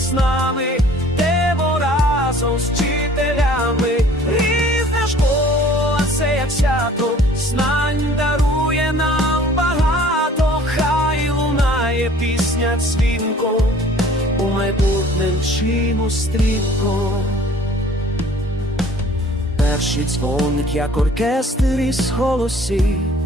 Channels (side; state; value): both; normal; correlation 0.52